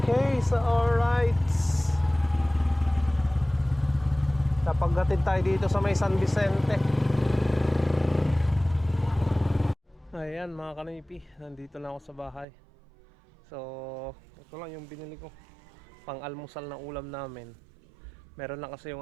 so alright, napaghatid tayo dito sa may San Vicente. Ayan mga kanaypi, nandito na ako sa bahay. So ito lang yung binili ko pang almusal na ulam namin. Meron na kasi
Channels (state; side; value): drops out; left; at 12.5 s